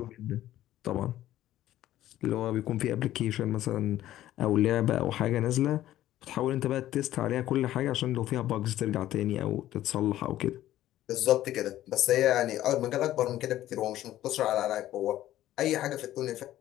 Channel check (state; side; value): quieter; right; 13.7 dB